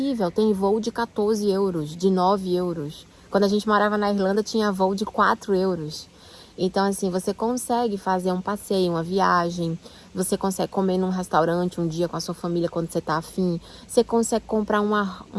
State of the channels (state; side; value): identical; both; correlation 1.00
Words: Tem voo de 14 euros, de 9 euros. Quando a gente morava na Irlanda, tinha voo de 4 euros. Então, assim, você consegue fazer um passeio, uma viagem, você consegue comer num restaurante um dia com a sua família quando você tá afim, você consegue comprar